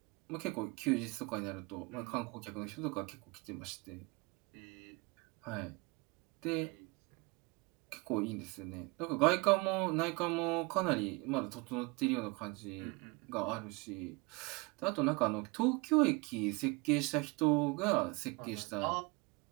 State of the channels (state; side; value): quieter; left; 26.8 dB